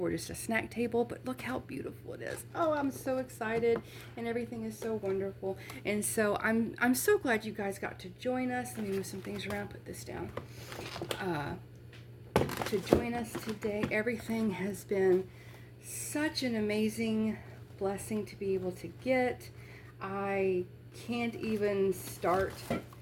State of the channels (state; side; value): identical; both; correlation 1.00